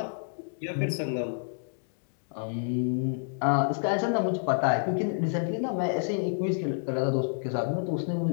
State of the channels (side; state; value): right; silent; digital silence